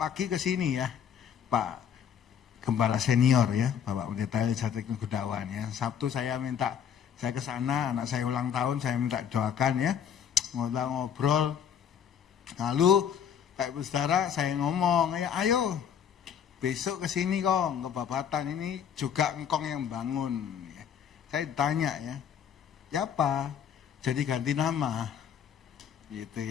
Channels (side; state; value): right; quieter; 8.3 dB